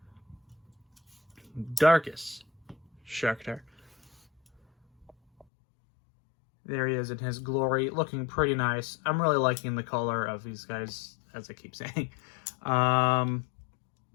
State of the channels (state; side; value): drops out; right; at 5.5 s